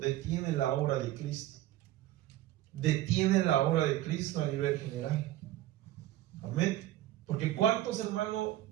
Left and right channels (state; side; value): quieter; left; 14.4 dB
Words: la obra de Cristo. Detiene la obra de Cristo a nivel general. Amén. Porque cuántos, hermanos,